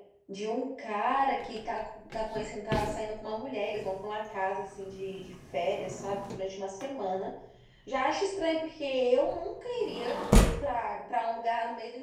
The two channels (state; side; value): identical; both; correlation 1.00